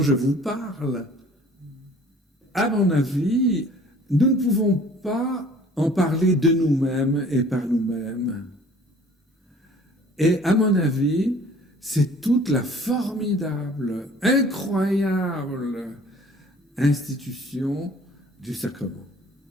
je vous parle. À mon avis, nous ne pouvons pas en parler de nous-mêmes et par nous-mêmes. Et à mon avis, c'est toute la formidable, incroyable institution du sacrement.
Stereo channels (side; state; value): both; normal; correlation 0.52